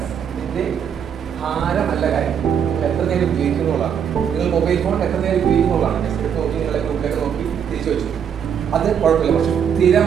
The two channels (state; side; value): quieter; left; 8.0 dB